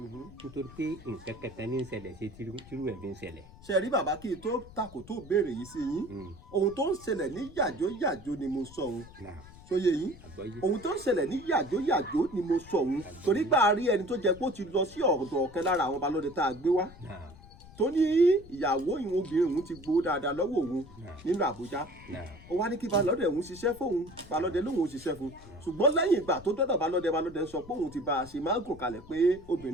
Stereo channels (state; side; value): noise; left; rumble, 20 dB below the sound